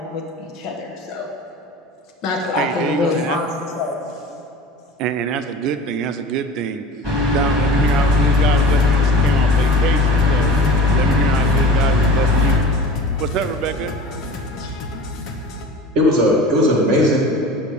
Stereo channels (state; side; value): normal; both; correlation 0.38